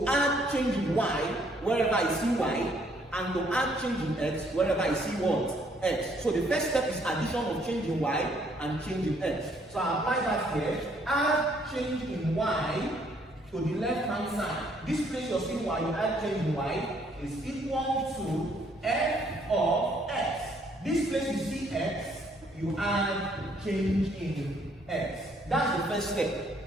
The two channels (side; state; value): both; normal; correlation 0.66